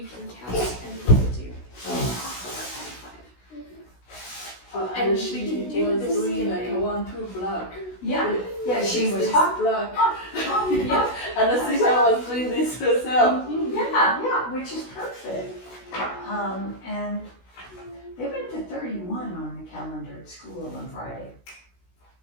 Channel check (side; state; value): right; late; 16 ms